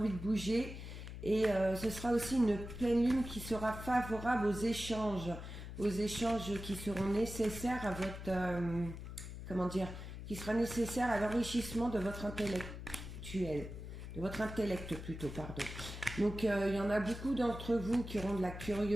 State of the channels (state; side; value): noise; left; hum, 9 dB below the sound